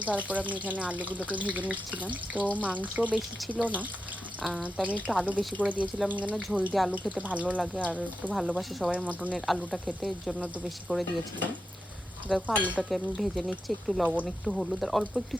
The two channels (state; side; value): normal; both; correlation 0.89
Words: তারপর আমি এখানে আলুগুলোকে ভেজে নিচ্ছিলাম। তো মাংস বেশি ছিল না, তো আমি একটু আলু বেশি করে দিয়েছিলাম, কেন ঝোল দিয়ে আলু খেতে ভালো লাগে আর একটু ভালোবাসে সবাই মটনের আলুটা খেতে, এর জন্য একটু বেশি করে দিয়েছিলাম। দেখো আলুটাকে আমি ভেজে নিচ্ছি, একটু লবণ, একটু হলুদ আর অল্প একটু